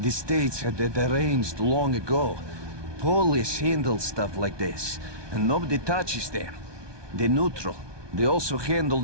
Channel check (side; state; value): left; late; 1.2 ms